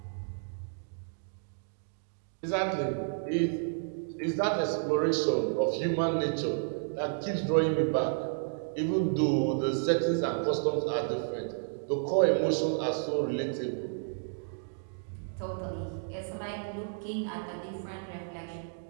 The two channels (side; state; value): left; silent; digital silence